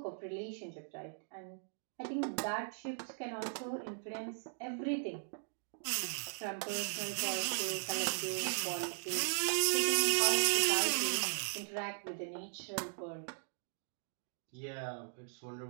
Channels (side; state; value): left; silent; digital silence